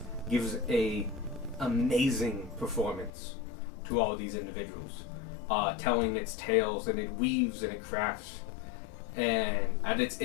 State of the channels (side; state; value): right; drops out; at 3.1 s